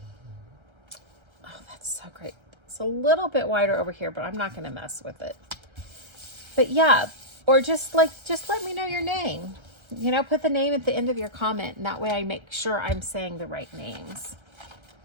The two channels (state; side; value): late; left; 1.3 ms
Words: that's so great. It's a little bit wider over here, but I'm not going to mess with it. But yeah, or just let me know your name. You know, put the name at the end of your comment, and that way I make sure I'm saying the right names.